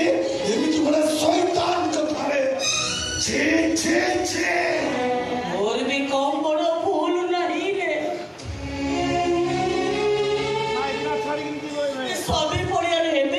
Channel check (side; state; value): both; identical; correlation 1.00